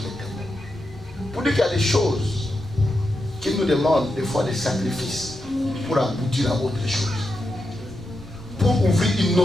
était mort. Pour dire qu'il y a des choses qui nous demandent des fois des sacrifices pour aboutir à autre chose. Pour ouvrir une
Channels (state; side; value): normal; both; correlation 0.87